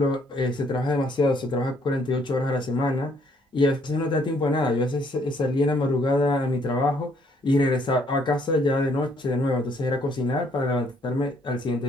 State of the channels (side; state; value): both; normal; correlation 0.66